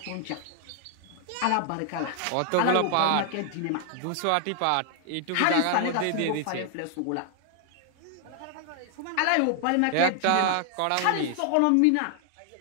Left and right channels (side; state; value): both; different; correlation 0.00